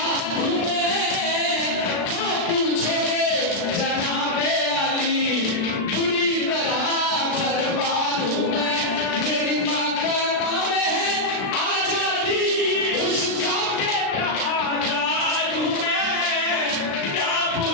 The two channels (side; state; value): right; late; 36 ms